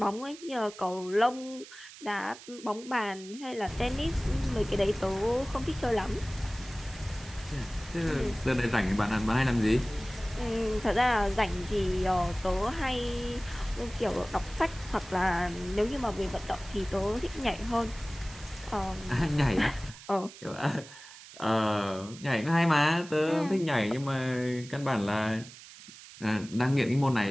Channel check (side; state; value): right; noise; hiss, 17 dB below the sound